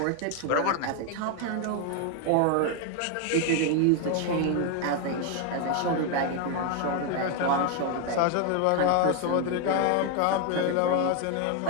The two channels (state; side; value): different; both; correlation 0.01